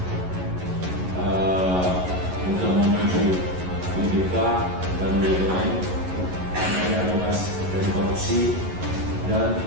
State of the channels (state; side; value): late; left; 11 ms